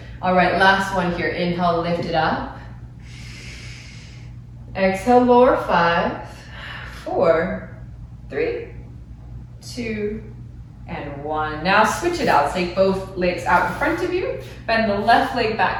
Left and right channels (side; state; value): both; identical; correlation 1.00